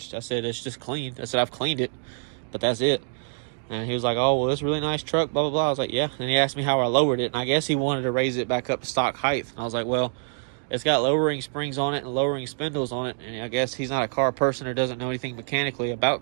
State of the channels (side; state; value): left; silent; digital silence